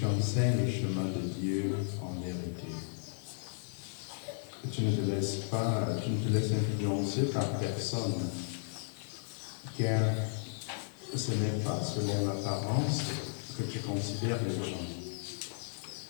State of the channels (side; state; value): right; silent; digital silence